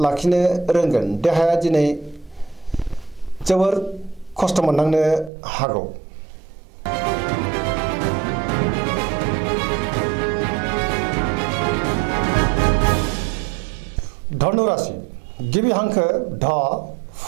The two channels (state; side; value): drops out; left; at 5.3 s